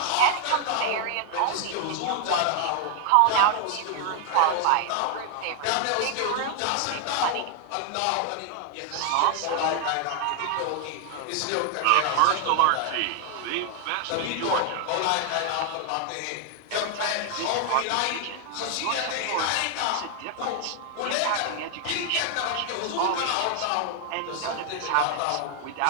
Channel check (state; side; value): different; both; correlation 0.00